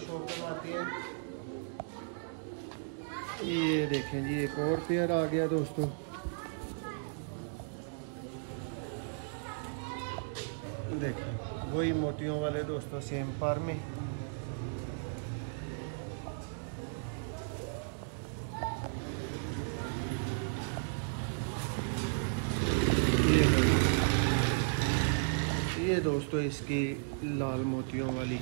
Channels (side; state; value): left; silent; digital silence